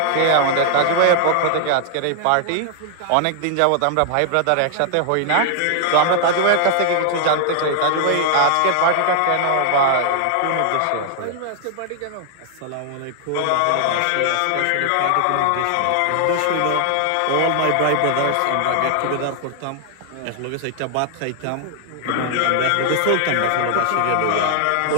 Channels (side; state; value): both; different; correlation 0.00